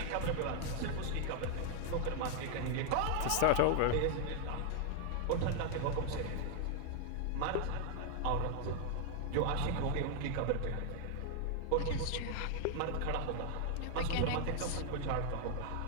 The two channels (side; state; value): both; different; correlation 0.00